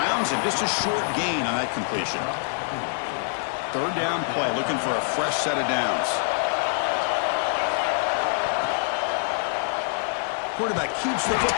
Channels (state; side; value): silent; right; 62 dB below the other